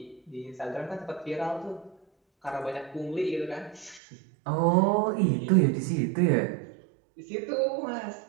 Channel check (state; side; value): drops out; left; at 4.0 s